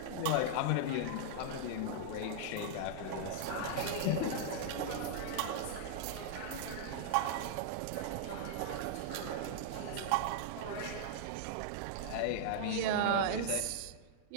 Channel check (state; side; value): different; both; correlation -0.01